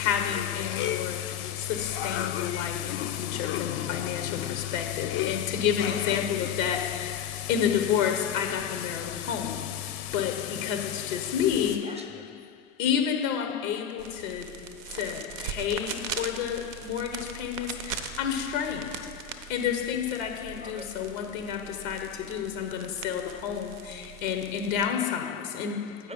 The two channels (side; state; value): right; quieter; 7.9 dB